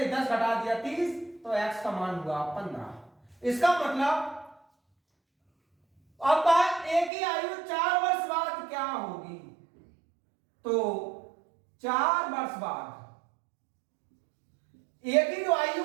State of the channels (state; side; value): drops out; left; at 7.1 s